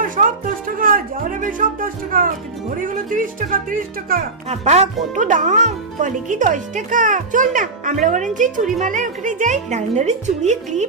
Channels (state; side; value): quieter; left; 3.6 dB